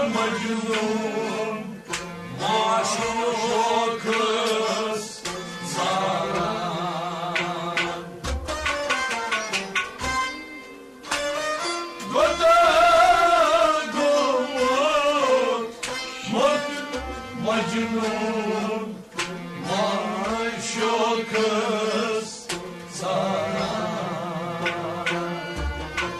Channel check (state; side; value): identical; both; correlation 1.00